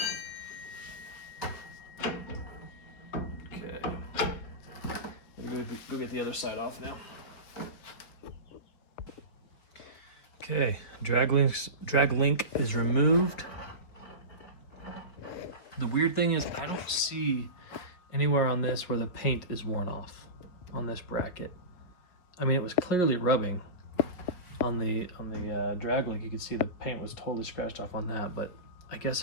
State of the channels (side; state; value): right; late; 5.0 ms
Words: Okay, go get the other side off now. Okay, drag link is removed. The weird thing is I don't see anywhere on this where the paint is worn off on this bracket. I mean, it was clearly rubbing on the drag link. You could see the paint was totally scratched off on that, but I